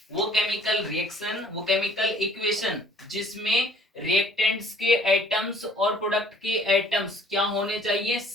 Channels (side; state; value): both; normal; correlation 0.56